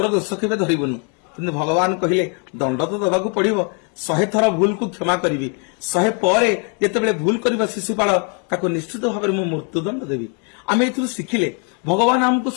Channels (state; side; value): quieter; right; 37.8 dB